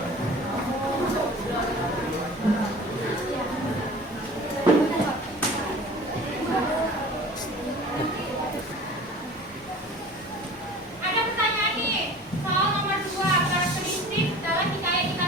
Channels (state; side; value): normal; both; correlation 0.42